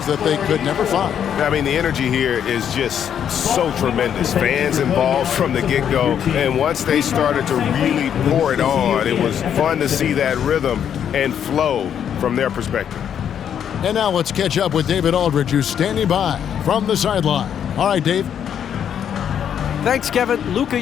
that they could never find. I mean, the energy here is just so tremendous. Fans involved from the get-go, and once they started to really pour it on, it was fun to see that rhythm and flow from their perspective. And now let's catch up with David Aldridge, who's standing by from the sideline. All right, Dave. Thanks, Kevin. Luka,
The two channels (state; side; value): quieter; right; 8.8 dB